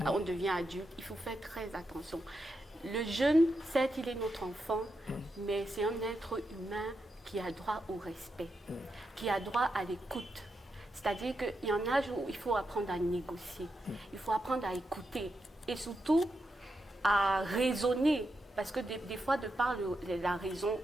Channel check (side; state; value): both; normal; correlation 0.85